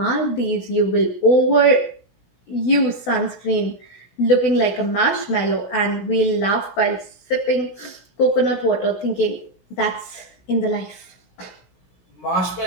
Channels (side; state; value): right; late; 16 ms